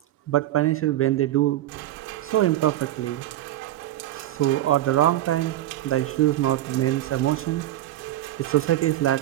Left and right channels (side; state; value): left; quieter; 14.1 dB